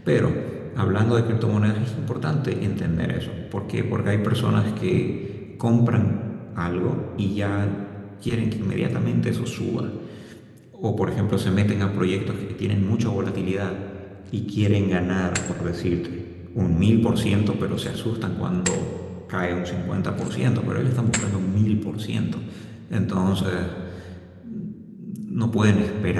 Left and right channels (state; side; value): identical; both; correlation 1.00